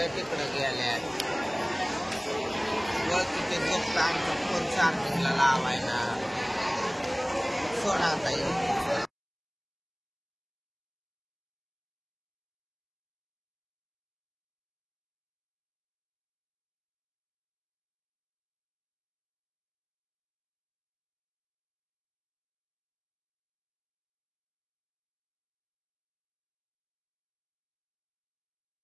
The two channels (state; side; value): identical; both; correlation 1.00